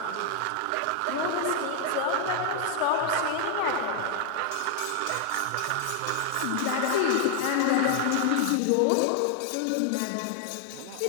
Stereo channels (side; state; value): both; different; correlation 0.00